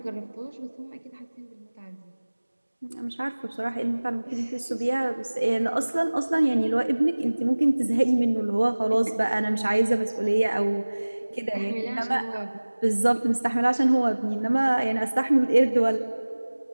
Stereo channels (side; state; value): both; inverted; correlation -1.00